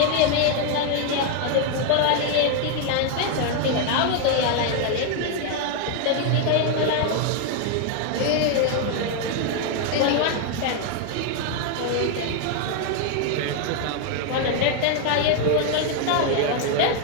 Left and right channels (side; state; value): both; different; correlation 0.01